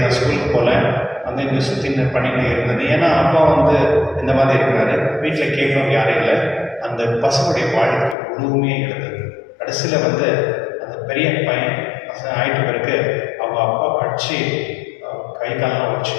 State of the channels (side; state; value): right; drops out; at 8.2 s